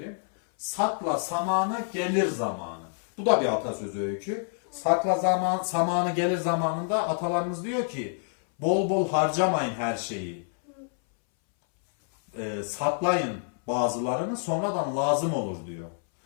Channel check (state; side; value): silent; right; 60 dB below the other